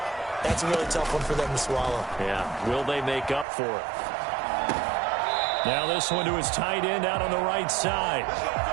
that's a really tough one for them to swallow. Yeah, will they make up for it? Now this one to his tight end out on the right side.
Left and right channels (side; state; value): left; drops out; at 3.5 s